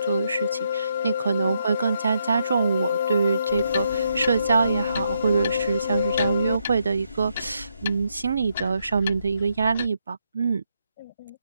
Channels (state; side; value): inverted; both; correlation -0.79